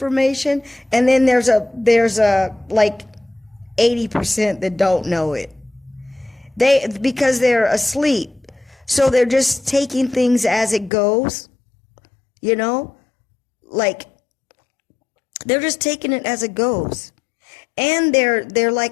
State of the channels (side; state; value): right; drops out; at 10.9 s